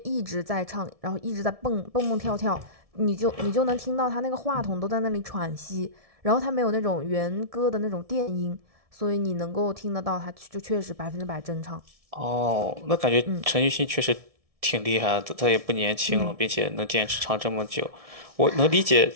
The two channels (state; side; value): late; left; 1.7 ms